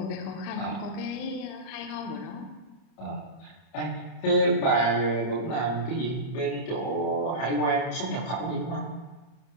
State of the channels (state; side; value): late; right; 30 ms